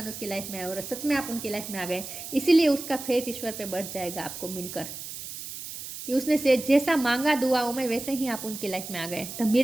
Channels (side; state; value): right; noise; hiss, 10 dB below the sound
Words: उसकी लाइफ में आए, और सच में आप उनकी लाइफ में आ गए। इसीलिए उसका फेथ ईश्वर पे बढ़ जाएगा आपको मिलकर, कि उसने से जैसा मांगा दुआओं में वैसे ही आप उनकी लाइफ में आ गए। द